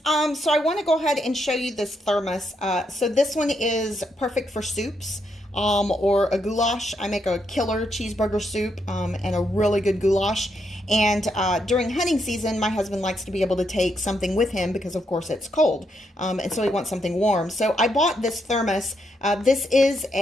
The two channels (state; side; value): normal; both; correlation 0.79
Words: so I want to go ahead and show you this thermos. So this one is perfect for soups, or a goulash. I make a killer cheeseburger soup, and a really good goulash. And during hunting season, my husband likes to be able to take something with him because, of course, it's cold, and so he wants something warm. So I bought this thermos. This is